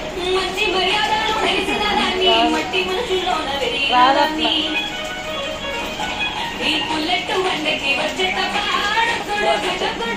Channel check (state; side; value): identical; both; correlation 1.00